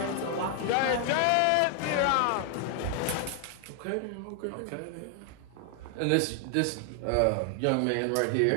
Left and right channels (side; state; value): both; different; correlation 0.00